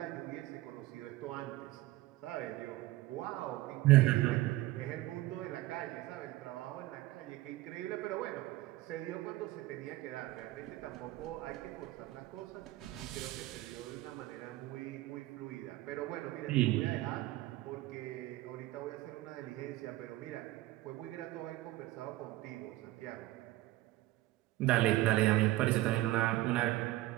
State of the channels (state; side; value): quieter; left; 17.5 dB